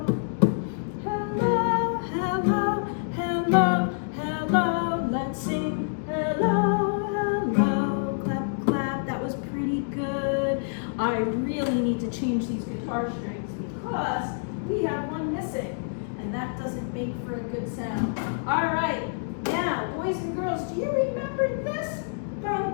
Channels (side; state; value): right; silent; digital silence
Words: Hello, hello, hello, hello. Let's sing hello, hello, clap, clap. That was pretty good. I really need to change these guitar strings because we have one missing, and that doesn't make for a good sound. All right, now, boys and girls, do you remember this?